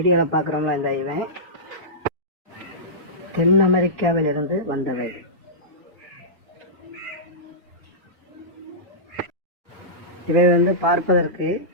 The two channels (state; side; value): normal; both; correlation -0.16